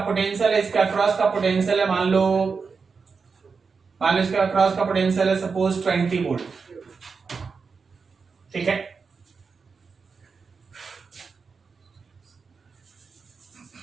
है, इसके अक्रॉस का पोटेंशियल है मान लो इसके अक्रॉस का पोटेंशियल है सपोज 20 वोल्ट, ठीक है।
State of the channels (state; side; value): quieter; left; 5.1 dB